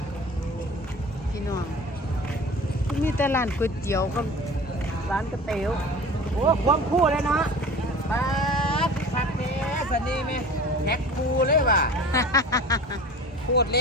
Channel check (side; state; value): both; normal; correlation 0.39